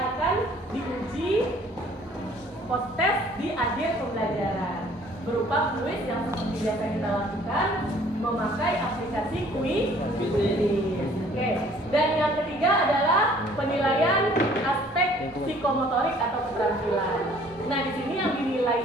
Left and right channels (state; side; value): normal; both; correlation 0.56